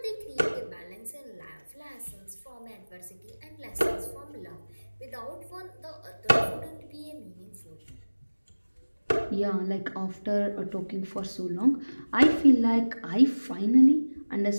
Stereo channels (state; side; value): inverted; both; correlation -1.00